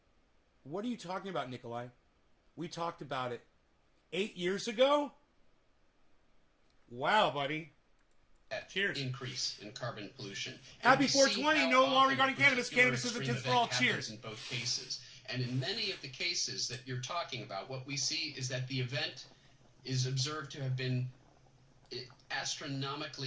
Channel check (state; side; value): identical; both; correlation 1.00